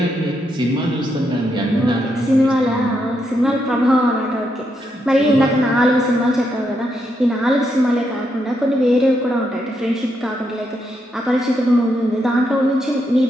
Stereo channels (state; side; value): normal; both; correlation 0.80